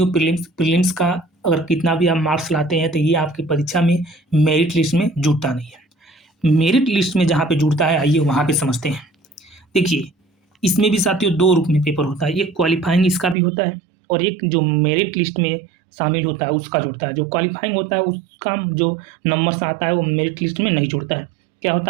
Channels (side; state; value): left; drops out; at 13.4 s